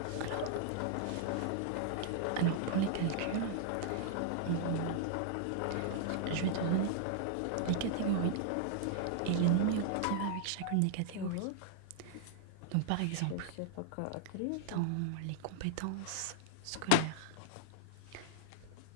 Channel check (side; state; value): both; different; correlation -0.01